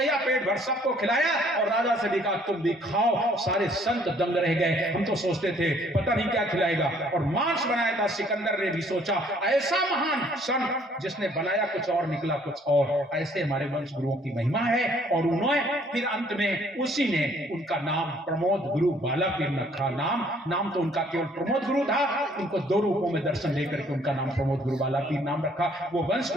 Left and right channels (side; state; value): both; normal; correlation 0.61